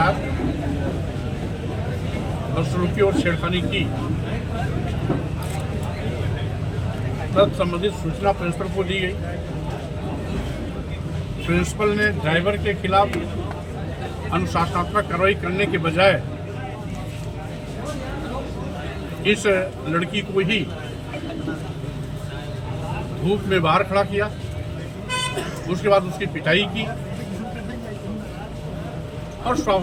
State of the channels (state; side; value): identical; both; correlation 1.00